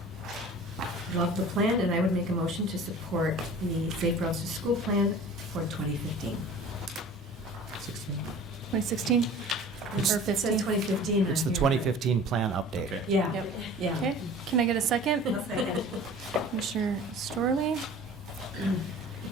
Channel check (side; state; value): both; normal; correlation 0.43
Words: love the plan, and I would make a motion to support the Safe Routes to School plan for 2015. 2016? Or It says 15? 2015 on It's the here. 2015 plan update. Okay. Yeah, Yep. yeah. Okay, can I get a second? I'll second. Commissioner Storley?